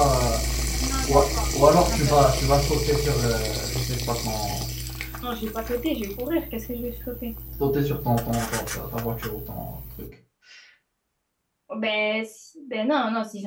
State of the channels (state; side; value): identical; both; correlation 1.00